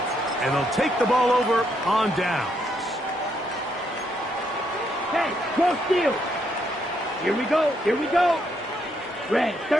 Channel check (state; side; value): normal; both; correlation 0.75